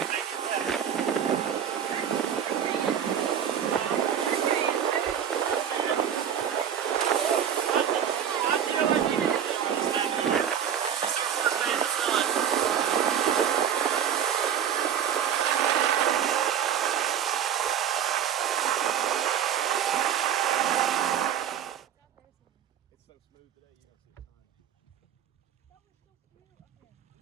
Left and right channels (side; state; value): left; quieter; 8.9 dB